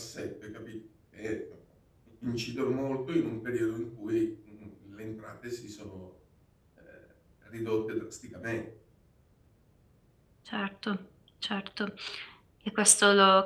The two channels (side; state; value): both; identical; correlation 1.00